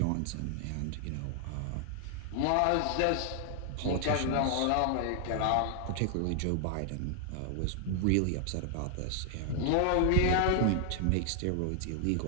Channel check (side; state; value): both; different; correlation 0.00